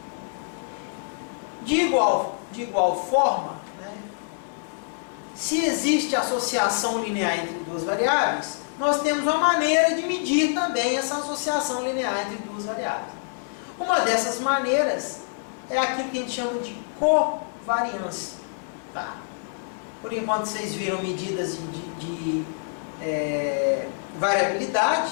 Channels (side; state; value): right; silent; digital silence